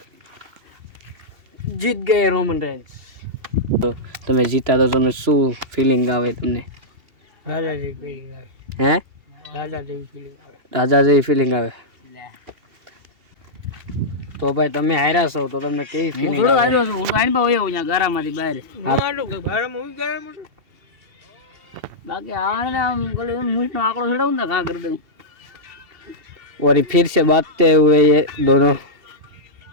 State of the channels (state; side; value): late; left; 2.7 ms